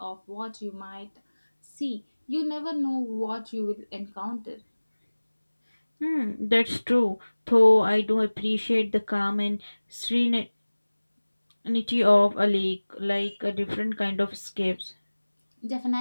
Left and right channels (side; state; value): both; inverted; correlation -1.00